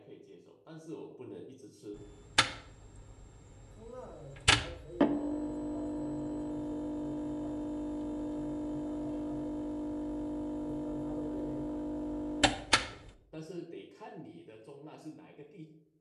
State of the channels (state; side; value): identical; both; correlation 1.00